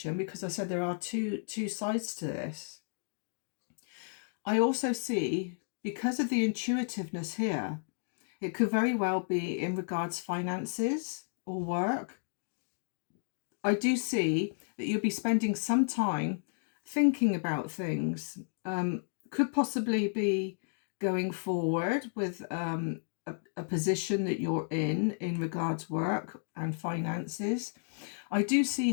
because I said there are two sides to this, I also see, because of the intuitiveness here, it could very well be in regards finances or work. I do see that you'll be spending some time thinking about things. Could possibly be going forward with a position that you're in regards work and finances. I do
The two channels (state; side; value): silent; right; digital silence